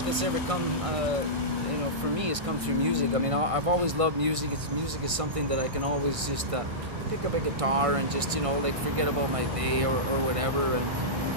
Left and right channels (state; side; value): late; left; 1.6 ms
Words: that's ever come, for me has come through music. I mean, I've always loved music. Music is something that I can always just pick up a guitar and just forget about my day or whatever,